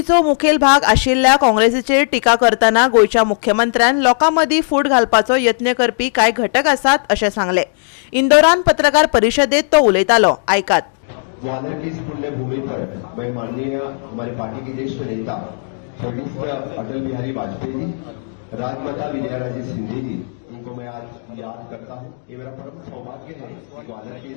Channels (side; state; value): right; silent; digital silence